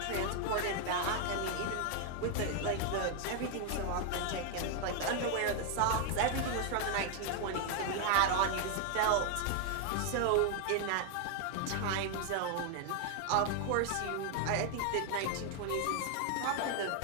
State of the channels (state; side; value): different; both; correlation 0.00